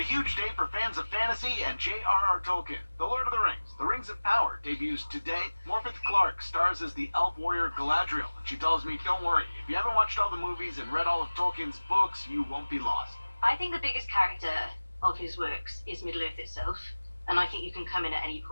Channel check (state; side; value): inverted; both; correlation -1.00